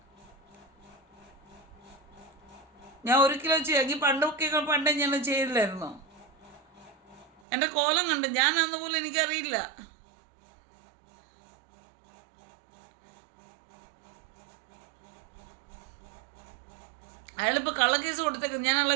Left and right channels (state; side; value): drops out; left; at 7.4 s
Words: 1 കിലോ എങ്കിൽ പണ്ടേ ഞാൻ ചെയ്തില്ലായിരുന്നോ? എൻ്റെ കോലം കണ്ട് ഞാൻ അന്നുപോലും എനിക്കറിയില്ല. അയാളിപ്പോൾ കള്ളക്കേസ് കൊടുത്തേക്ക്. ഞാൻ